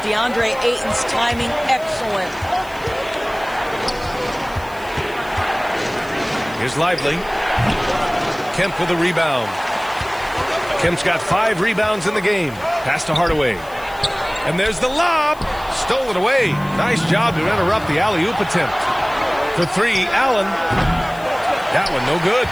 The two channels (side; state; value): left; noise; hiss, 23 dB below the sound